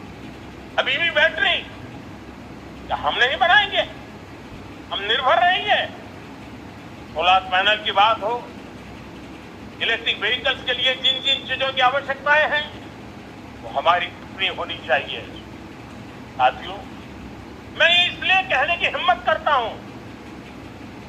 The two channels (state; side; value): identical; both; correlation 1.00